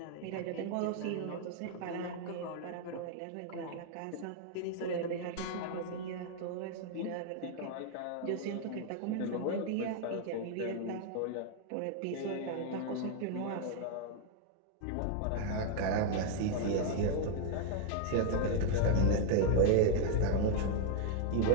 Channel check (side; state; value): both; different; correlation 0.00